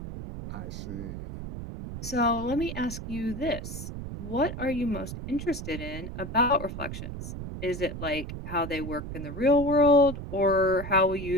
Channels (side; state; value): right; noise; rumble, 8 dB below the sound